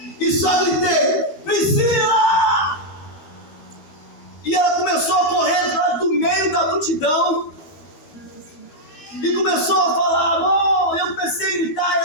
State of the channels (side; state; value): right; late; 12 ms